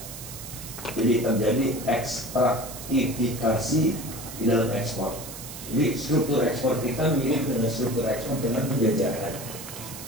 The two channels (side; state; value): right; noise; hiss, 12 dB below the sound